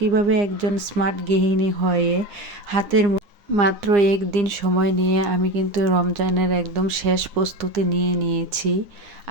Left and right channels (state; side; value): late; left; 9.8 ms